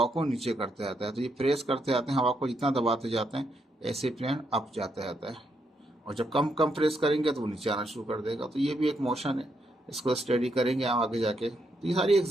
को नीचे करते जाता है, तो ये प्रेस करते जाते हैं, हवा को जितना दबाते जाते हैं ऐसे प्लेन अप जाता जाता है। और जब कम कम प्रेस करेंगे तो वो नीचे आना शुरू कर देगा। तो ये भी एक मोशन है, इसको स्टडी करेंगे हम आगे जाके। तो ये सारी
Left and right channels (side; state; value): both; normal; correlation 0.78